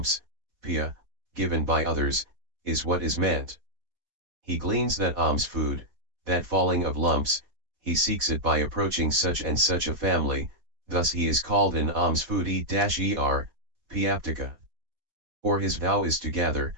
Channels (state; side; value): late; left; 4.2 ms